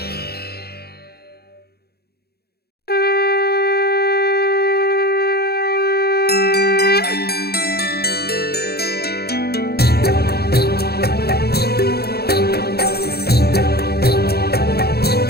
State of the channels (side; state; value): right; late; 0.46 ms